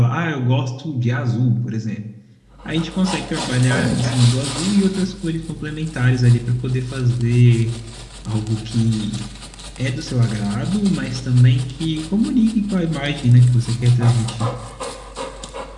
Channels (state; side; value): identical; both; correlation 1.00